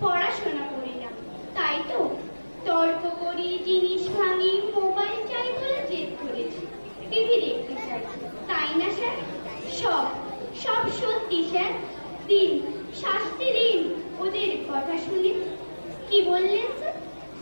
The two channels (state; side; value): inverted; both; correlation -1.00